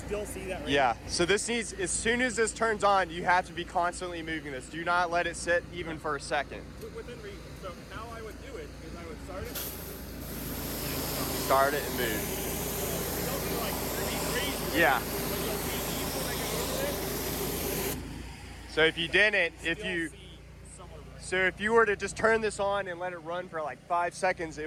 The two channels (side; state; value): both; identical; correlation 1.00